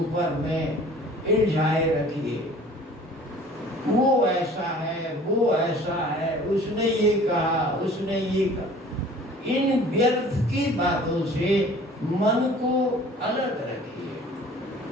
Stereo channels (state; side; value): normal; both; correlation 0.48